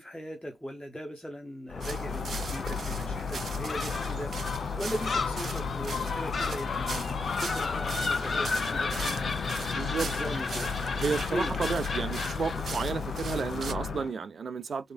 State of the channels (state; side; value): normal; both; correlation 0.81